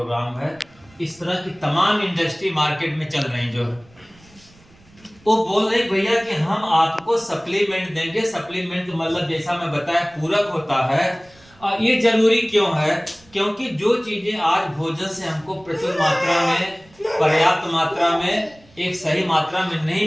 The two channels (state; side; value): noise; right; rumble, 28 dB below the sound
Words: है। इस तरह की तमाम इंडस्ट्री मार्केट में चल रही जो है, वो बोल रहे भैया कि हम आपको सप्लीमेंट देंगे। सप्लीमेंट मतलब जैसा मैं बताया पूरक होता है। ये जरूरी क्यों है? क्योंकि जो चीजें आज भोजन से हमको प्रचुर मात्रा में पर्याप्त मात्रा में, एक सही मात्रा में